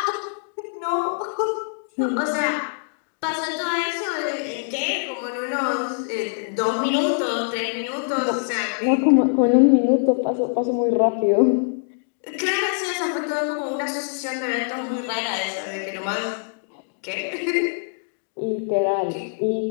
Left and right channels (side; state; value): right; silent; digital silence